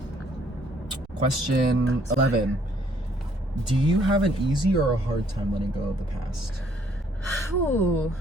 Question 11. Do you have an easy or a hard time letting go of the past? Ooh.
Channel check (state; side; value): normal; both; correlation 0.65